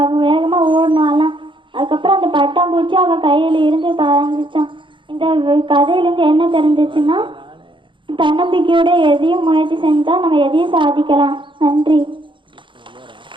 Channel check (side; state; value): left; late; 0.24 ms